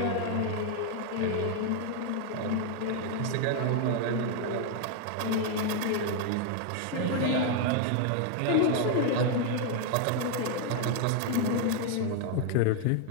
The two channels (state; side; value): different; both; correlation 0.00